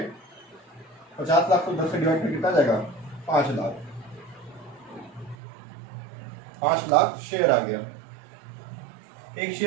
50 लाख को 10 से डिवाइड कर कितना जाएगा, 5 लाख। 5 लाख शेयर आ गया। एक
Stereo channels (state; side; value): drops out; left; at 5.4 s